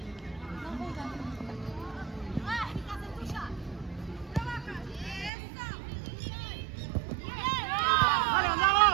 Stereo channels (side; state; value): left; drops out; at 5.3 s